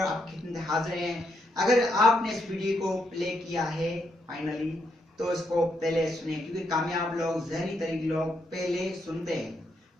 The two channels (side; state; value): both; normal; correlation 0.78